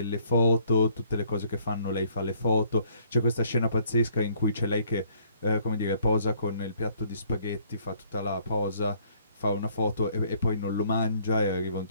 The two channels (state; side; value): inverted; both; correlation -0.62